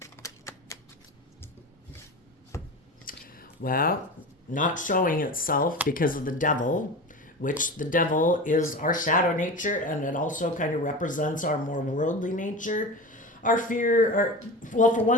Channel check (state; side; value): normal; both; correlation 0.29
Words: Well, not showing itself because of the devil, which the devil is our shadow nature, and it also kind of represents our more worldly nature. Our fear, well, for